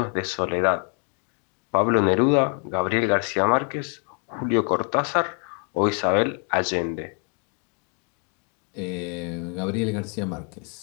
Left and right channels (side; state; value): right; quieter; 39.9 dB